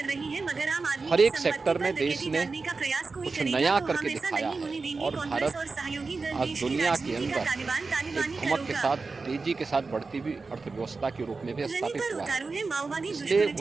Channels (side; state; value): left; quieter; 4.1 dB